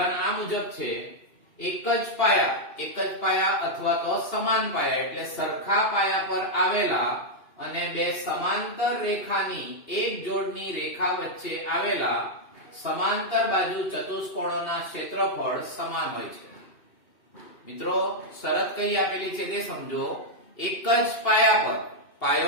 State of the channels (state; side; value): late; right; 2.8 ms